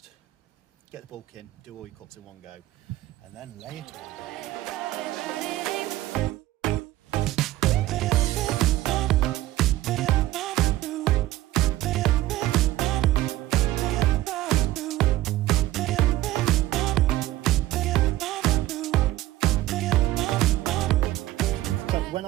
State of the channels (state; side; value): quieter; left; 15.4 dB